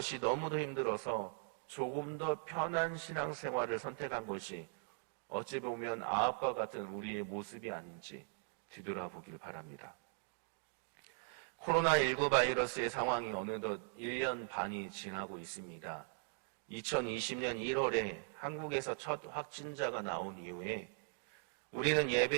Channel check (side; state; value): left; silent; 51 dB below the other